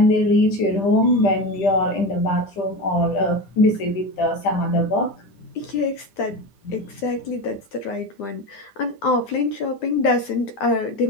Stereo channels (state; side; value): late; right; 10 ms